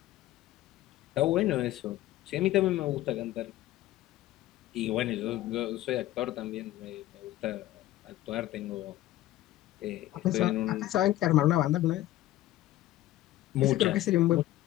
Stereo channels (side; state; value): right; quieter; 15.0 dB